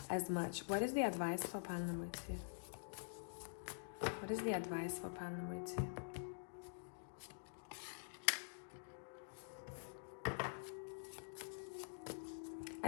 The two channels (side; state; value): right; silent; digital silence